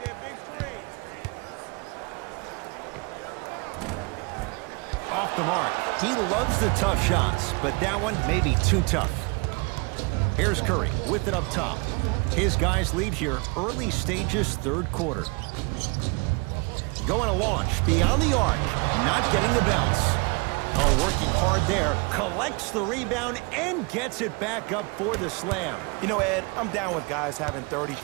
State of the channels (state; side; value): quieter; left; 29.4 dB